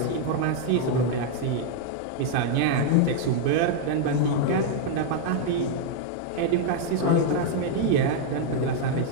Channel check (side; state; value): both; different; correlation 0.00